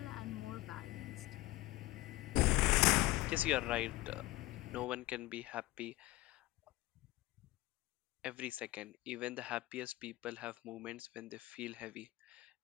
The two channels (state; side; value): quieter; right; 18.5 dB